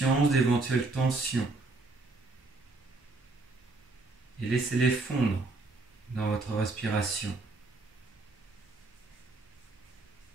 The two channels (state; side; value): quieter; left; 3.4 dB